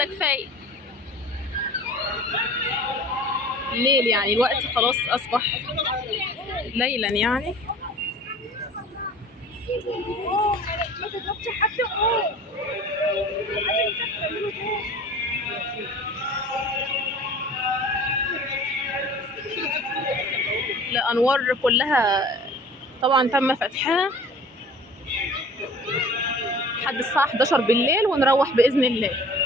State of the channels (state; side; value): normal; both; correlation 0.44